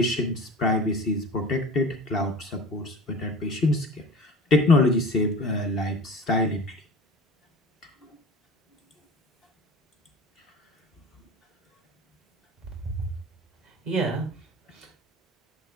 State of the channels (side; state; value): both; normal; correlation 0.37